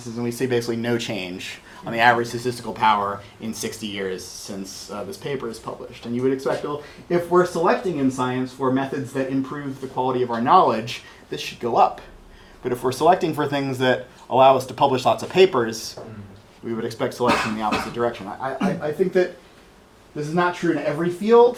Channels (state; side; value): identical; both; correlation 1.00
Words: and we see basically no change on the average statistical power in 60 years since this paper is published. And you would expect, well, if we're selecting in science for methods that improve the quality of our knowledge, this should go up. But if we're selecting for things that allow us to publish lots of papers, we would expect selection in the opposite direction. I think that this is not true in every field,